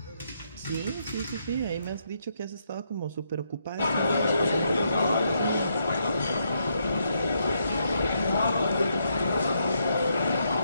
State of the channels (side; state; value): both; inverted; correlation -0.77